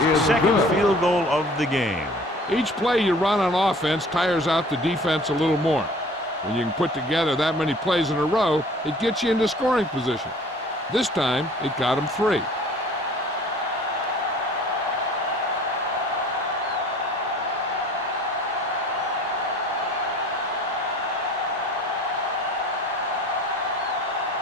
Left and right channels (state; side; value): normal; both; correlation 0.49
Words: second field goal of the game. Each play you run on offense tires out the defense a little more. When you can put together that many plays in a row, it gets you into scoring position. This time, it got him 3.